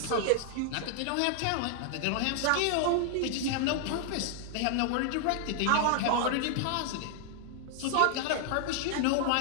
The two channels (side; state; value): both; different; correlation 0.00